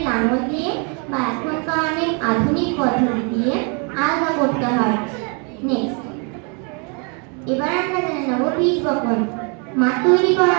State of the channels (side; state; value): left; quieter; 36.3 dB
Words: লাঙল দিয়ে বা এখনকার অনেক আধুনিক পদ্ধতি দিয়ে আলগা করতে হয়। নেক্সট, এবার আমরা জেনে নেব বীজ বপন। মাঠ তৈরি